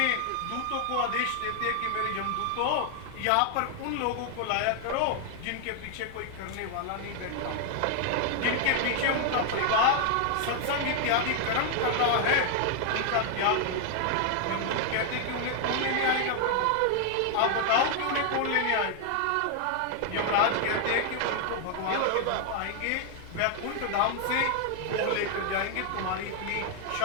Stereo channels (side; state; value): both; different; correlation 0.00